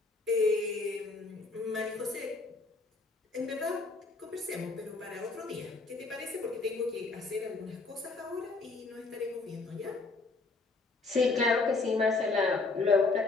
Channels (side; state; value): right; quieter; 3.7 dB